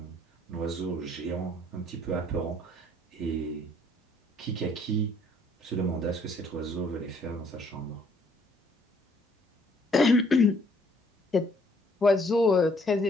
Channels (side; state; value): both; normal; correlation 0.63